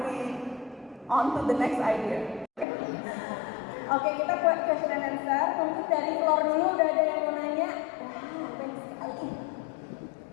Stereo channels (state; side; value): drops out; right; at 2.7 s